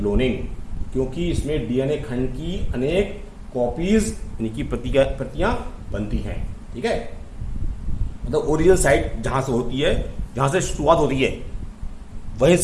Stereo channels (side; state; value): both; identical; correlation 1.00